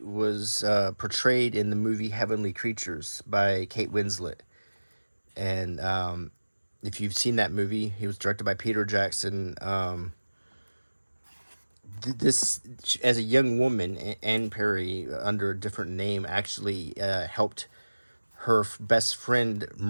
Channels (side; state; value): both; inverted; correlation -1.00